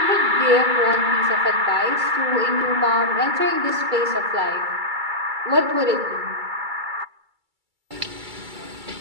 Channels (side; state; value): left; late; 2.3 ms